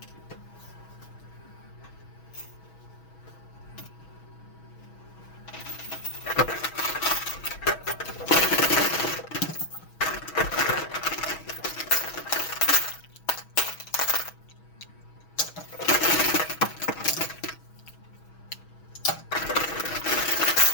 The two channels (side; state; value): right; late; 6.2 ms